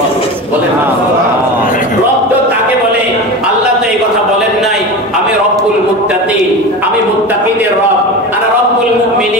বলেন রব তো তাকে বলে। আল্লাহ তো এই কথা বলেন নাই আমি রব্বুল মুত্তাকিন, আমি মুত্তাকিদের রব, আর রব্বুল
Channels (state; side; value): normal; both; correlation 0.27